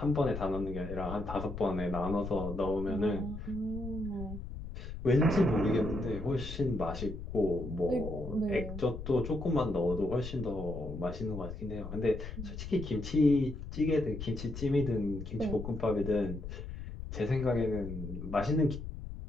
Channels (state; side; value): noise; left; rumble, 8 dB below the sound